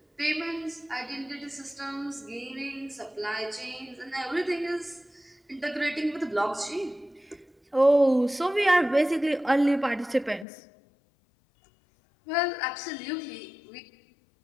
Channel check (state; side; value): drops out; right; at 10.5 s